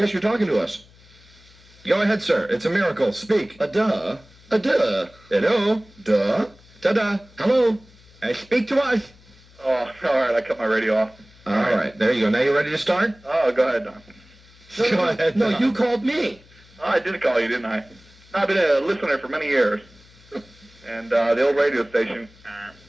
talking to us. Go ahead, sir. It's a miracle. Speak. A duh. Hello. Duh. Ta-da. Hello. Speak to us. Oh, all right, I cut my radio off. All right, there you go. Now you ready to start? Oh, go ahead, Don. Go ahead. No, Don. you called me. Oh, I did call you, didn't I? I've been a listener for many years. And the old radio station.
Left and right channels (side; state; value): left; noise; hum, 26 dB below the sound